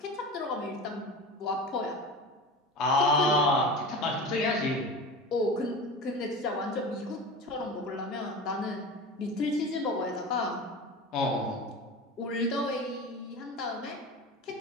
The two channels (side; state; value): both; normal; correlation 0.31